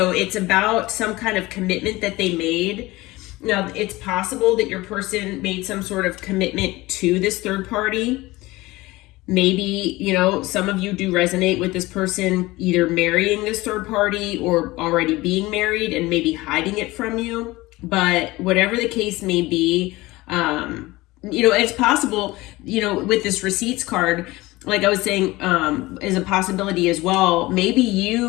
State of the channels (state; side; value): quieter; right; 20.0 dB